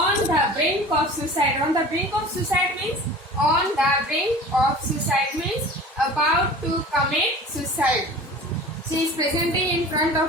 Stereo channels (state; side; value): normal; both; correlation 0.40